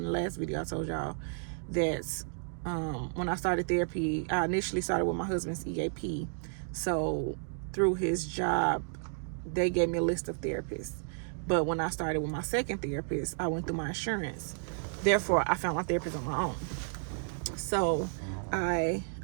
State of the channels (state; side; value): silent; left; digital silence